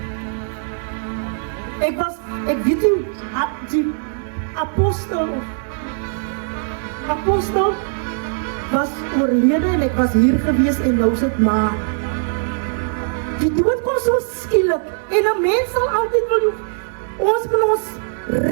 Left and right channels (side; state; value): left; silent; digital silence